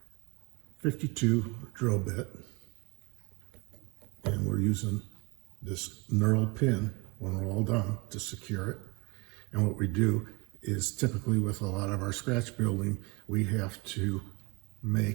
52 drill bit. And we're using this knurled pin when we're all done to secure it. And what we do is typically with a lot of our scratch building, we have to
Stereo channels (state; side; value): quieter; left; 26.8 dB